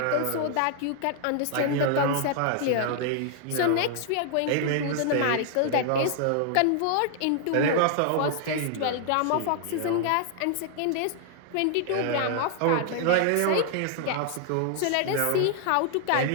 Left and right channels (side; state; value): both; different; correlation 0.00